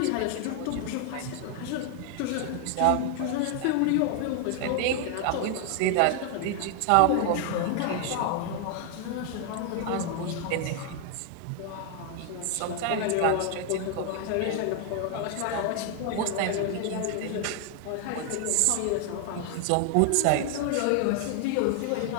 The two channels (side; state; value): both; different; correlation 0.00